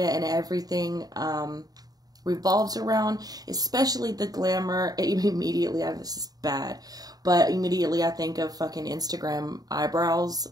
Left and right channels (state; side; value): late; left; 0.18 ms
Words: and everything revolves around, especially the glamour. Immediately, this is bad, but immediately I think of fucking Instagram eyebrows.